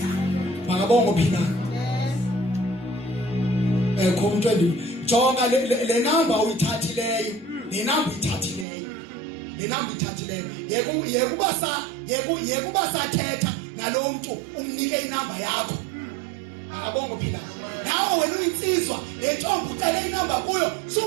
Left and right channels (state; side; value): drops out; left; at 8.7 s